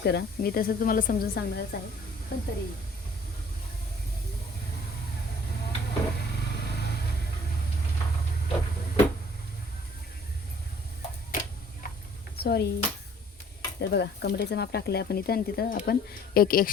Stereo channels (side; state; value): both; normal; correlation 0.55